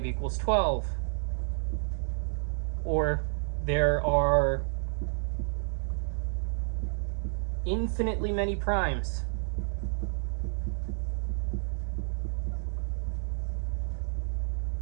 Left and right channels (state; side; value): silent; left; 57 dB below the other